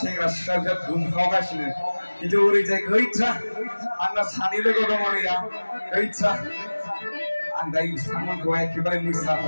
सिख्लाफोरा दुमखावगासिनो खिन्थु ओरैजाय गैथ्रा आंना सानै लोगो दङ नैया गैथ्रा आं दायो बिथांमोनखौ एखेबारे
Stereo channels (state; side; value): inverted; both; correlation -1.00